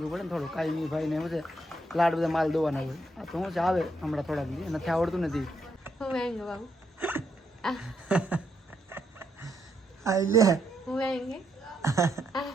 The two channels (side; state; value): both; normal; correlation 0.77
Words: પડે ને થોડું. કાંઈ નહીં ભાઈને શું છે લાડ બધા માલ દોવાના હોય. આ તો શું છે આવે હમણાં થોડાક દી નથી આવડતું નથી. ખાઈ લે